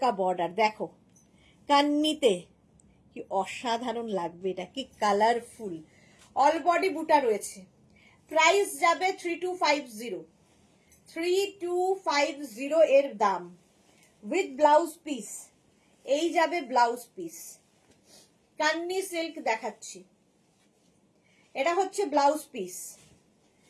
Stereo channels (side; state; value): both; identical; correlation 1.00